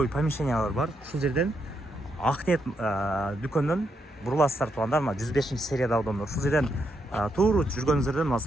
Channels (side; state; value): both; normal; correlation 0.80